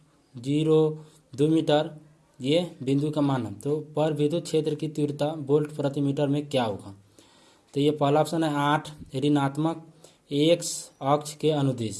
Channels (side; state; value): both; identical; correlation 1.00